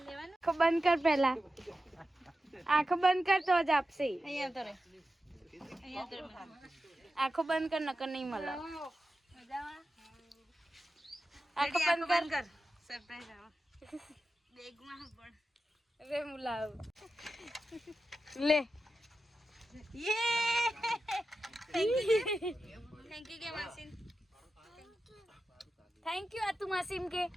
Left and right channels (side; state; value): both; normal; correlation 0.91